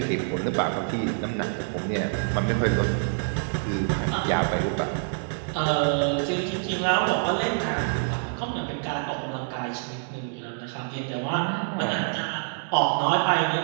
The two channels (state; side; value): silent; left; digital silence